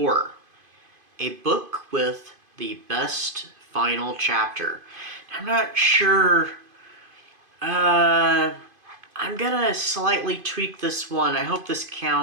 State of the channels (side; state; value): left; late; 2.5 ms